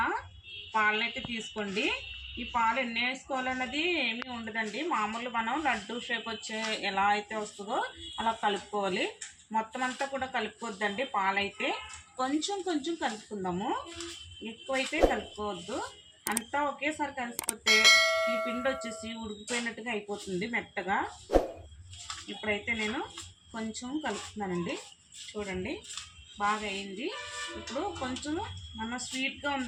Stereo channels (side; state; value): both; identical; correlation 1.00